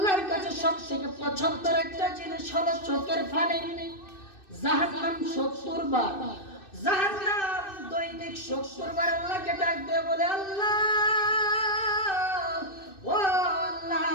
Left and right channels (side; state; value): right; late; 2.6 ms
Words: কাছে সবথেকে পছন্দের একটা জিনিস হলো চোখের পানি। জাহান্নাম ৭০ বার, জাহান্নাম দৈনিক ৭০ বার আল্লাহকে ডাক দিয়ে বলে, আল্লাহ, ও আল্লাহ,